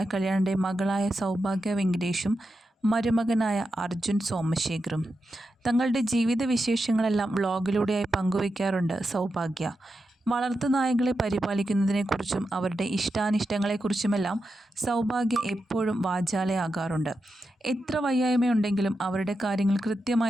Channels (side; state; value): both; normal; correlation 0.88